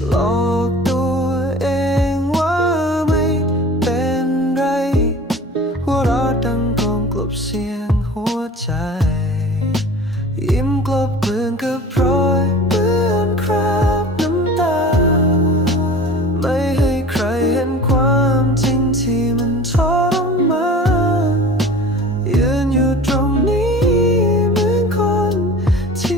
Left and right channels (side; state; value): both; normal; correlation 0.41